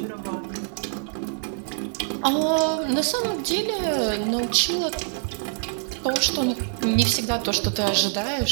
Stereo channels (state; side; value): silent; left; digital silence